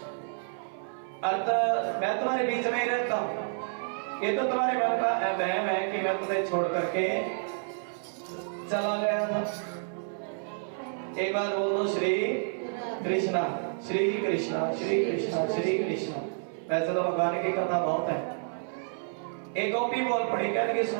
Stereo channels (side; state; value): left; silent; 57 dB below the other